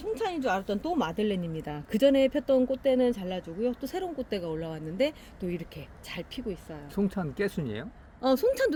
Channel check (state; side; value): identical; both; correlation 1.00